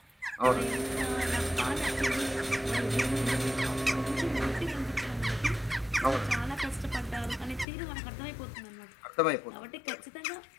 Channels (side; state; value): right; drops out; at 7.7 s